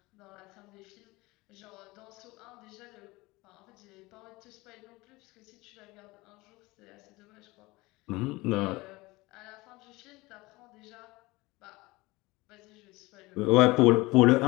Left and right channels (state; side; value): quieter; right; 21.7 dB